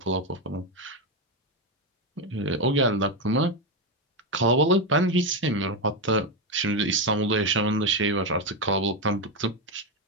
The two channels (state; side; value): normal; both; correlation 0.09